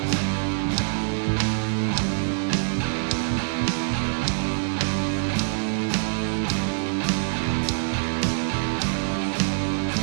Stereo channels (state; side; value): silent; left; 62 dB below the other